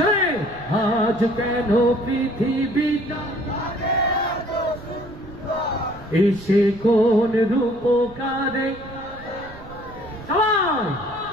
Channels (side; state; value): right; noise; rumble, 18 dB below the sound